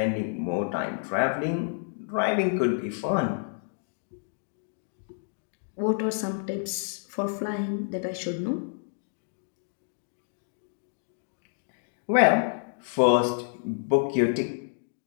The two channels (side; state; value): right; silent; digital silence